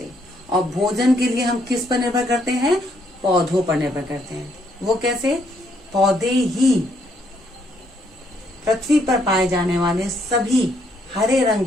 और भोजन के लिए हम किस पर निर्भर करते हैं? पौधों पर निर्भर करते हैं। वो कैसे? पौधे ही पृथ्वी पर पाए जाने वाले सभी हरे रंग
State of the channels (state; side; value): normal; both; correlation 0.71